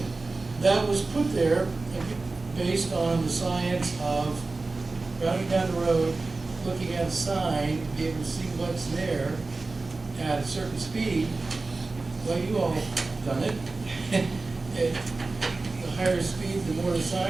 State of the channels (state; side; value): quieter; left; 3.5 dB